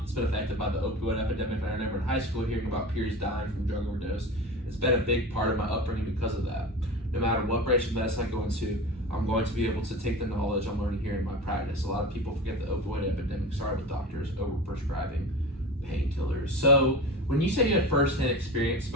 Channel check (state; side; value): normal; both; correlation 0.31